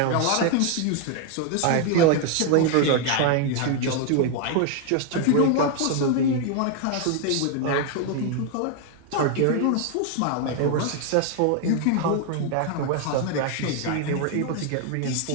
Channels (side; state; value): both; different; correlation 0.00